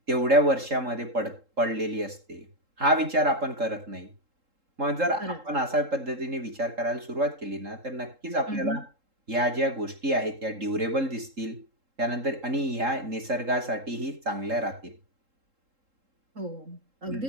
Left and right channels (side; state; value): left; late; 3.7 ms